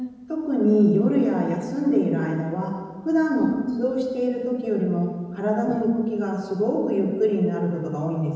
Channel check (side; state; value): both; identical; correlation 1.00